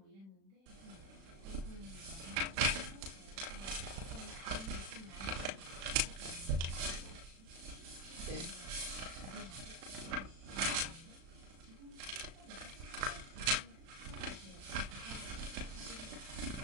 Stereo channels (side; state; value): left; late; 36 ms